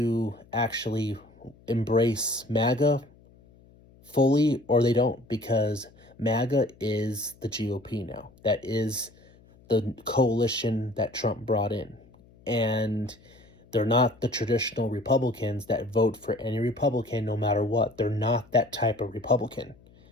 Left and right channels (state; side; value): noise; left; hum, 27 dB below the sound